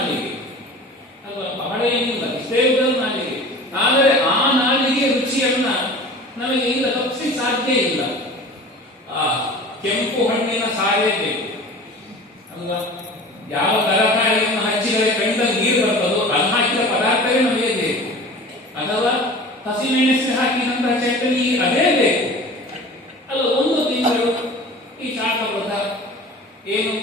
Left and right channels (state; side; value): normal; both; correlation 0.39